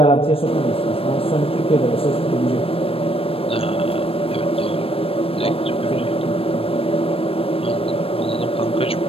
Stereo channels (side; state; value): right; late; 0.28 ms